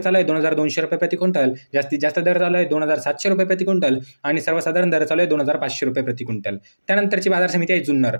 आहे 2,200 रुपये प्रति क्विंटल, जास्तीत जास्त दर चालू आहे 2,700 रुपये प्रति क्विंटल आणि सर्वसाधारण दर चालू आहे 2,500 रुपये प्रति क्विंटल। त्यानंतरची बाजार समिती आहे जुन्नर।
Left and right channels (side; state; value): both; inverted; correlation -1.00